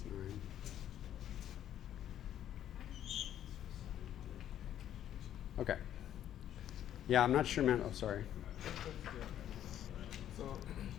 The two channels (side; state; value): right; quieter; 11.0 dB